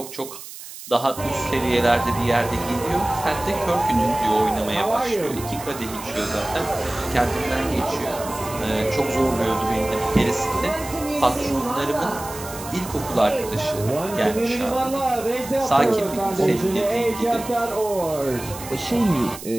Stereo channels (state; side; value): noise; right; hiss, 13 dB below the sound